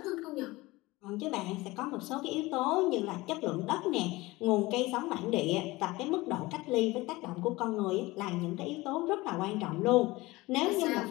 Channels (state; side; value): quieter; right; 20.7 dB